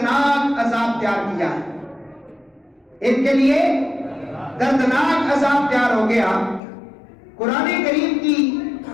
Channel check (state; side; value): drops out; right; at 6.6 s